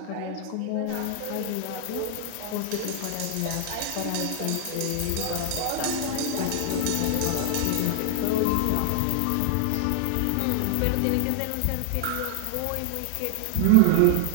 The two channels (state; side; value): different; both; correlation 0.00